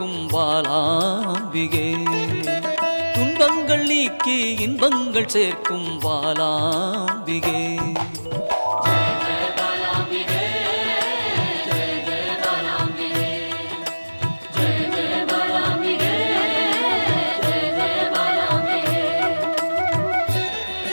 பாலாம்பிகே, துன்பங்கள் நீக்கி இன்பங்கள் சேர்க்கும் பாலாம்பிகே.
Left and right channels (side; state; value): both; inverted; correlation -1.00